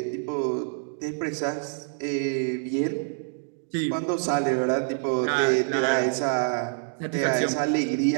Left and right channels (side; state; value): left; silent; digital silence